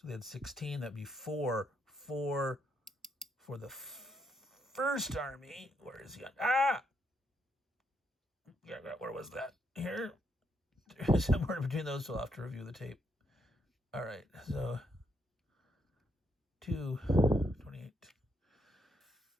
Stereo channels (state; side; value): normal; both; correlation 0.77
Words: they had 16. That'd be 4 for the first army. Where is he on? Ah! Yeah, where was that? Here? Somewhere between those, so I'll have to review the tape. All right, so 2, 28.